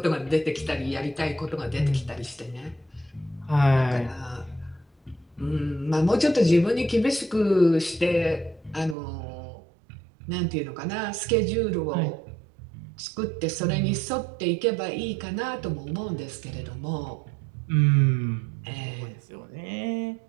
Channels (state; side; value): drops out; left; at 9.0 s